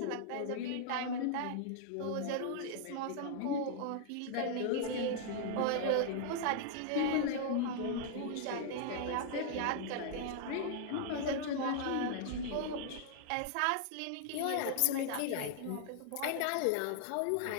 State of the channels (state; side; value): different; both; correlation -0.01